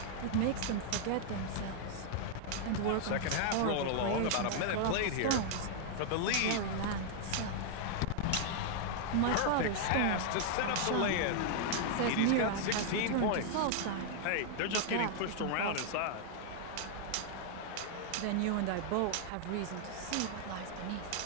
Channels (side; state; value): both; different; correlation 0.00